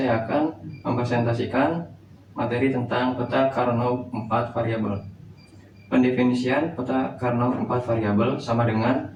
akan mempresentasikan materi tentang peta Karnov 4 variabel. Pendefinisian peta Karnov 4 variabel sama dengan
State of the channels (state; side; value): identical; both; correlation 1.00